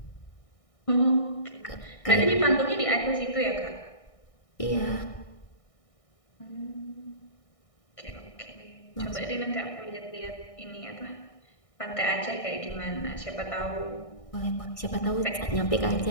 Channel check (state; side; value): late; right; 1.6 ms